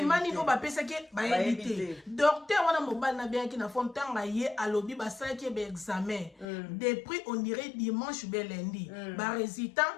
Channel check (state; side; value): drops out; right; at 6.5 s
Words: niveau bapesa ke bayebite docteur wana mobile na bien ki na fond tanga ye alobi basala ki be examen depuis on dirait dimanche be lundi ba